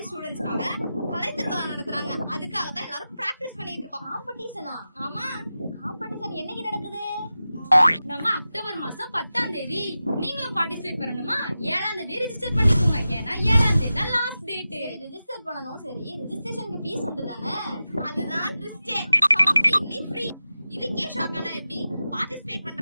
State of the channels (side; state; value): both; inverted; correlation -0.93